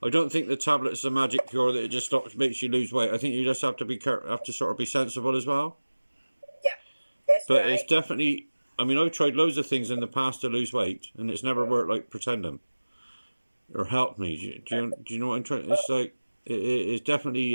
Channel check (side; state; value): both; inverted; correlation -1.00